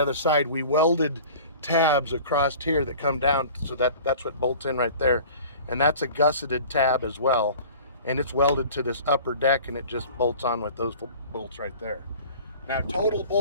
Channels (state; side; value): inverted; both; correlation -0.43